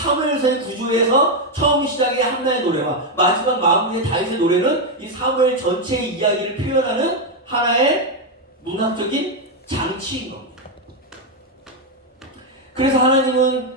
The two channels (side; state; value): both; normal; correlation 0.04